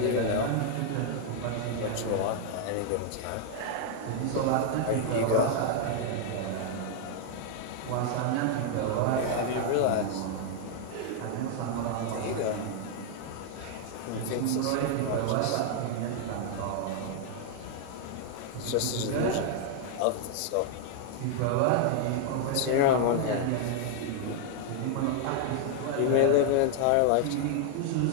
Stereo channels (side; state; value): both; different; correlation 0.00